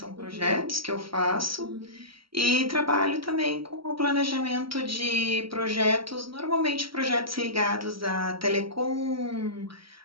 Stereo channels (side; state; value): left; late; 0.75 ms